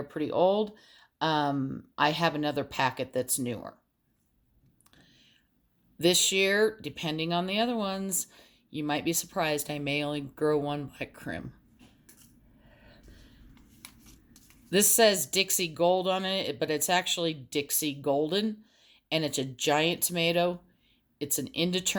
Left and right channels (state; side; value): identical; both; correlation 1.00